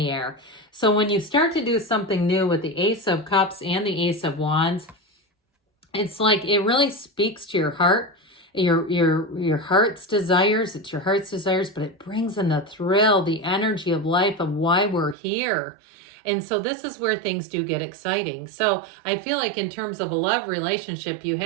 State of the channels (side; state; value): left; drops out; at 15.2 s